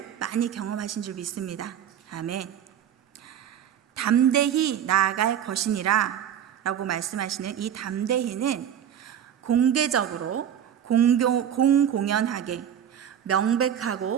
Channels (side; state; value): left; quieter; 9.5 dB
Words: 많이 경험하신 줄 믿습니다. 아멘. 담대히 나아갈 것이니라 라고 말씀하시는 이 담대히는 공개적으로 공공연하게